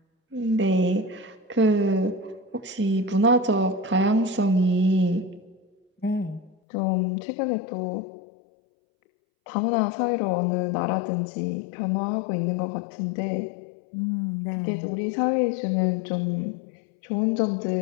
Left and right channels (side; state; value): right; drops out; at 6.6 s